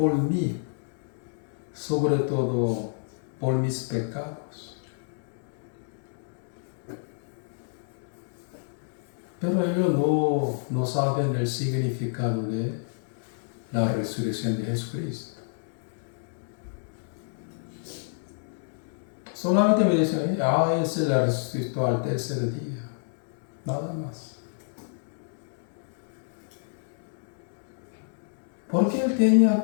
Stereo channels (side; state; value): right; silent; digital silence